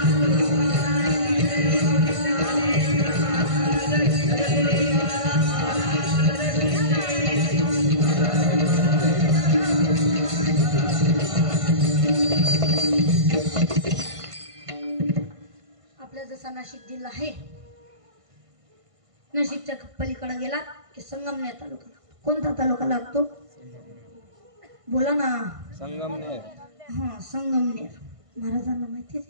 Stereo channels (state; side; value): late; left; 1.5 ms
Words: आपला जसा नाशिक जिल्हा आहे, नाशिकच्या पलीकडे गेला की संगमनेर तालुका. कोणता तालुका लागतो? बोला ना. संगमनेर. हा, संगमनेर. महाराजांना माहिती